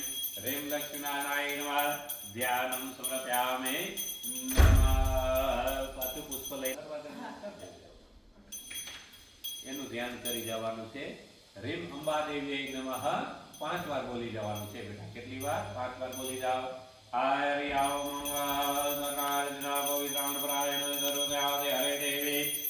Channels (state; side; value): identical; both; correlation 1.00